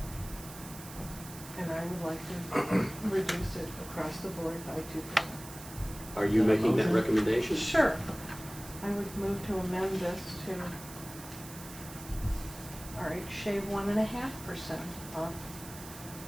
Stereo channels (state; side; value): noise; right; hiss, 14 dB below the sound